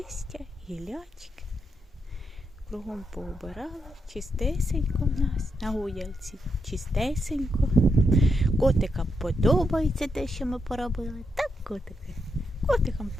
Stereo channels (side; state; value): both; normal; correlation 0.82